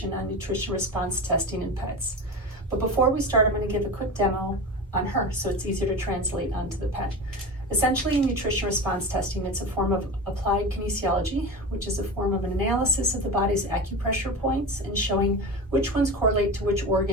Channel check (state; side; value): normal; both; correlation 0.27